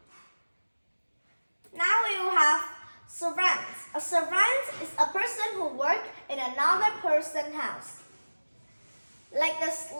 Now we will have servants. A servant is a person who works in another person's house. Like the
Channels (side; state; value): both; inverted; correlation -1.00